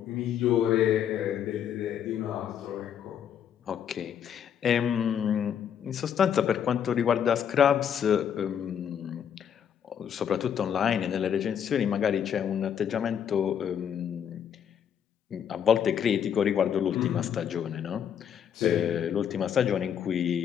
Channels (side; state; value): right; quieter; 8.7 dB